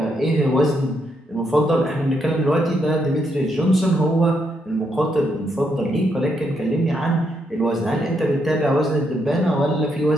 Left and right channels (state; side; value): normal; both; correlation 0.77